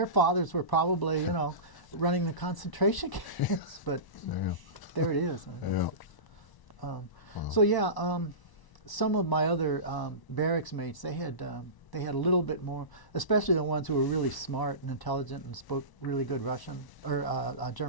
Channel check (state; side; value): late; right; 1.0 ms